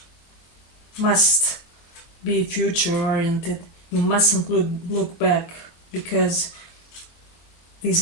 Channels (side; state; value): right; late; 23 ms